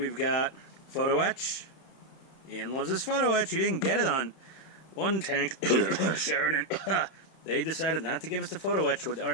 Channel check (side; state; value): right; late; 31 ms